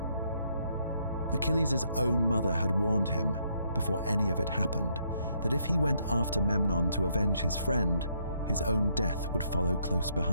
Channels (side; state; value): both; inverted; correlation -0.73